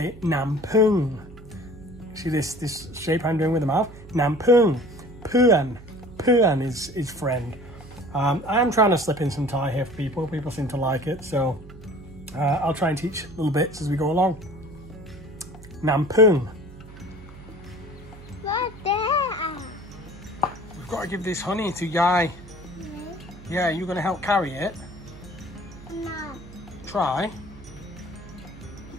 nam pung. See this shape I'm doing with the mouth? Nam pung. Puan. Puan is friend. I am trying to slip in some Thai here for people. People seem to like it, so I'll try and teach little bits as we go along. Nam pung. What there? We've got to give this honey to Yai. Yeah, you're going to help carry it? No. Try.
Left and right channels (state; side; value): noise; right; hum, 18 dB below the sound